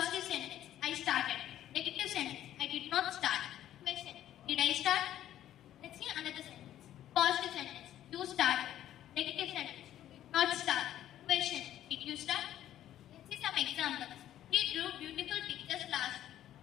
sentence, I started. Negative sentence, I did not start. Question, did I start? Let's see another sentence. Positive sentence, you started. Negative sentence, you did not start. Question, did you start? Let's see some examples. He drew beautiful pictures last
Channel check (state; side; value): quieter; right; 12.1 dB